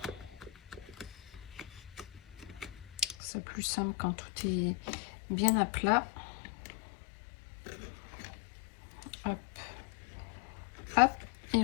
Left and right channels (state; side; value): drops out; right; at 3.2 s